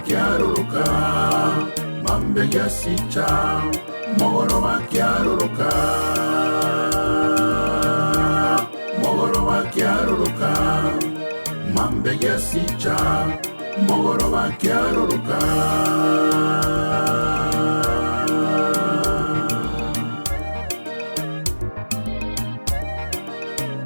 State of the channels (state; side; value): inverted; both; correlation -1.00